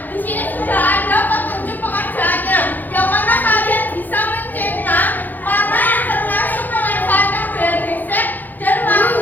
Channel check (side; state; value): right; late; 0.085 ms